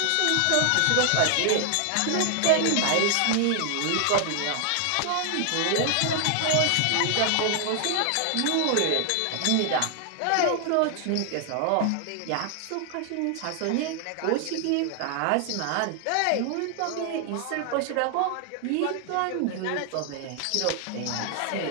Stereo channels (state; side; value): different; both; correlation 0.00